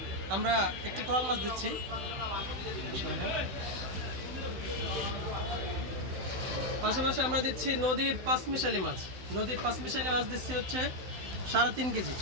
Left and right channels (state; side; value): late; left; 16 ms